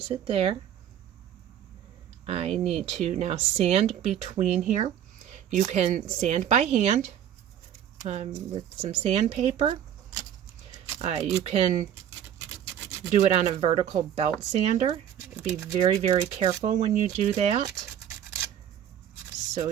it there. I need to now sand between here. You can sand by hand with some sandpaper. You can do it on a vertical belt sander. Be very, very careful when you do that, so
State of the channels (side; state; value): left; quieter; 10.1 dB